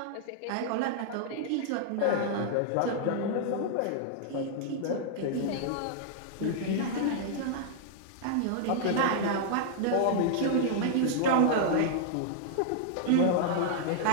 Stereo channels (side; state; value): both; different; correlation -0.01